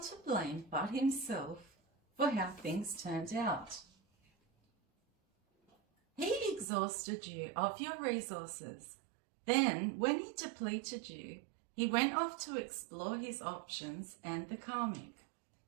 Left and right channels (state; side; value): drops out; left; at 6.7 s